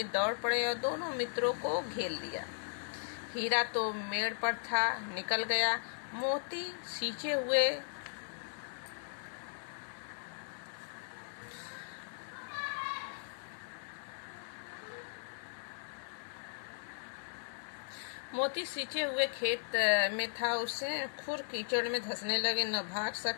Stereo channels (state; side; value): silent; right; digital silence